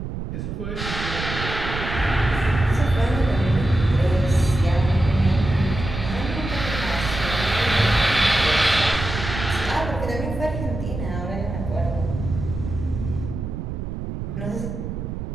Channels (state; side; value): noise; right; rumble, 6 dB below the sound